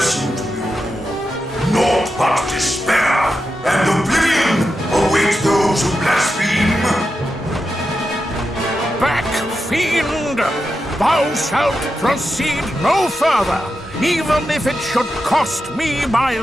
to you all. Naught but despair and oblivion await those who blaspheme. Back, fiend! Thou shalt proceed no further, even if it should cost me my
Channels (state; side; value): normal; both; correlation 0.88